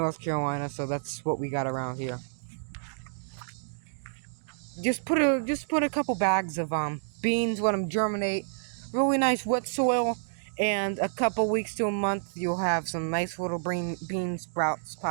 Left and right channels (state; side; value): silent; left; digital silence